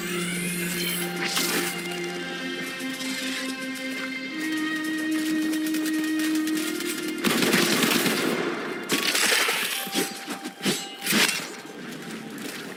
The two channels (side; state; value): both; identical; correlation 1.00